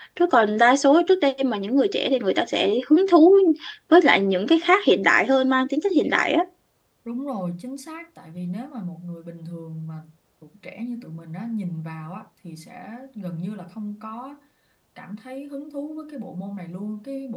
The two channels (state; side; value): identical; both; correlation 1.00